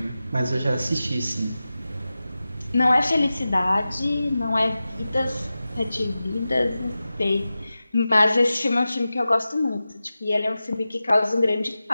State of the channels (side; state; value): both; inverted; correlation -0.95